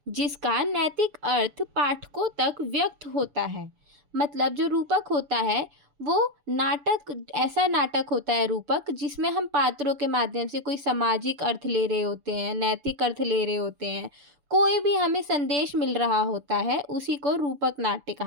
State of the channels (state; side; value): late; left; 6.9 ms